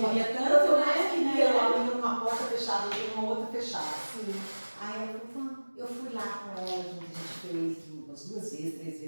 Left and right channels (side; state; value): both; inverted; correlation -1.00